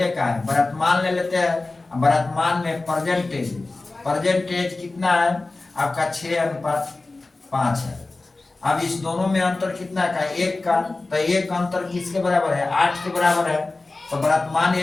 का है, वर्तमान ले लेते हैं। वर्तमान में परसेंटेज कितना है आपका, 6:5 है। अब इस दोनों में अंतर कितना का, 1 का, तो 1 का अंतर किसके बराबर है, 8 के बराबर है। तो वर्तमान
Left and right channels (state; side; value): quieter; right; 3.3 dB